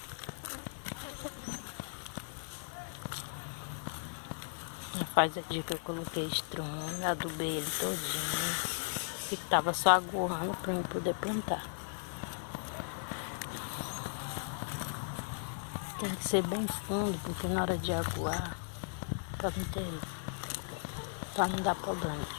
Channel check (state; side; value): silent; right; digital silence